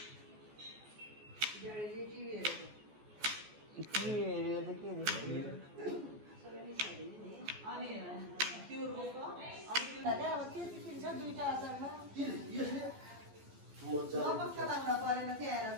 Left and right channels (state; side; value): late; left; 14 ms